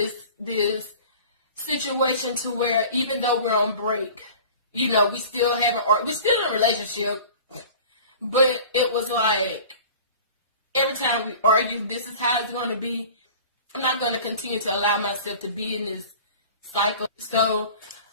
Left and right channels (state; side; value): inverted; both; correlation -0.42